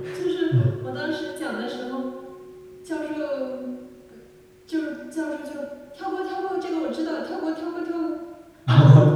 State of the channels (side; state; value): both; identical; correlation 1.00